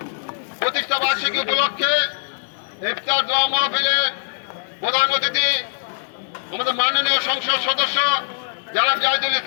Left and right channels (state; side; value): silent; right; digital silence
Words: প্রতিষ্ঠা বার্ষিকী উপলক্ষে ইফতার দোয়া মাহফিলের প্রধান অতিথি আমাদের মাননীয় সংসদ সদস্য জনাব জাহিদুল